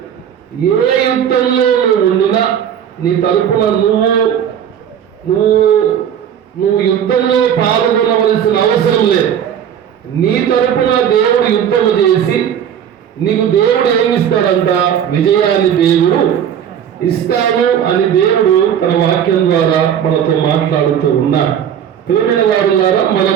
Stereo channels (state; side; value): quieter; left; 9.1 dB